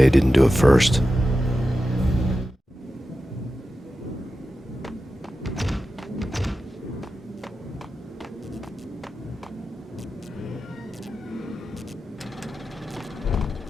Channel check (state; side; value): normal; both; correlation 0.92